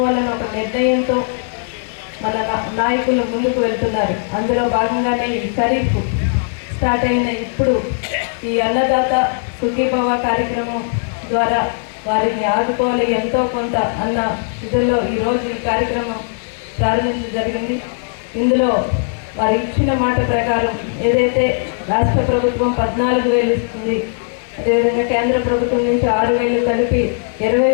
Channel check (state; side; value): silent; right; 66 dB below the other